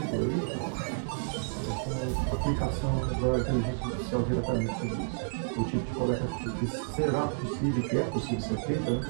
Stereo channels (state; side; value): silent; left; digital silence